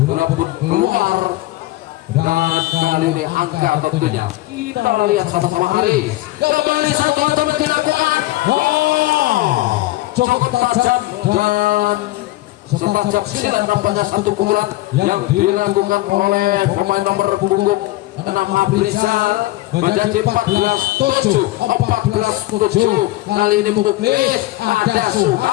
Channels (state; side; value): quieter; right; 18.0 dB